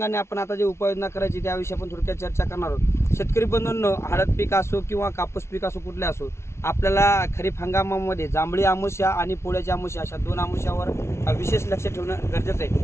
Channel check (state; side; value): late; right; 0.13 ms